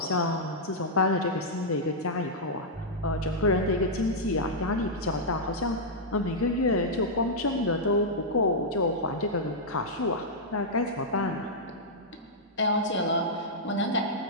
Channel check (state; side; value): normal; both; correlation -0.08